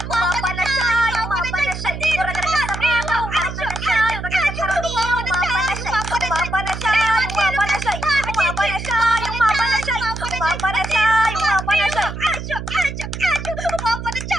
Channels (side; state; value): right; noise; hum, 7 dB below the sound